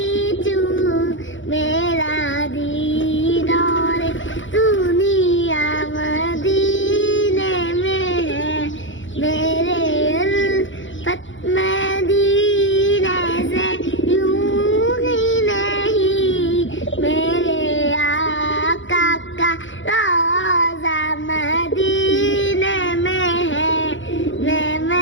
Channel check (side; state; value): right; late; 0.56 ms